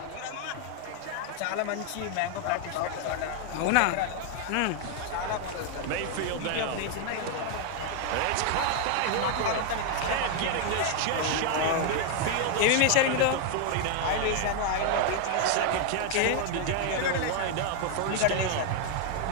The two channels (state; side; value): different; both; correlation 0.00